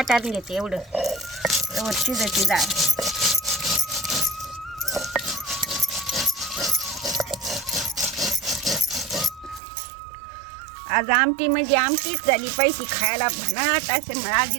घेते एवढं. एवढं शिजायची डाळ. आज आमटी म्हणजे आमटीच झाली पाहिजे. खायला भन्नाट असं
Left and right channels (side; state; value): left; drops out; at 9.6 s